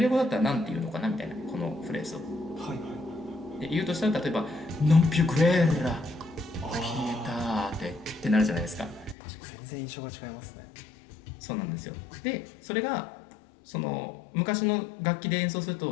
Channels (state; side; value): drops out; right; at 9.2 s